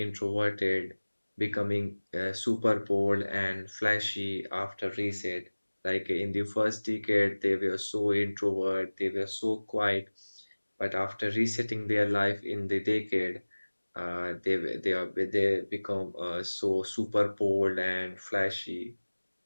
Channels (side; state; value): both; inverted; correlation -1.00